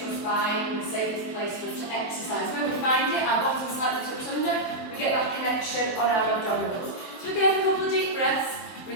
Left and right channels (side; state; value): right; late; 23 ms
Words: spine and the safest place for us to exercise. When we find it, our bottom slightly tucks under, we get that connection on our abdominals. So again, a couple of deep breaths,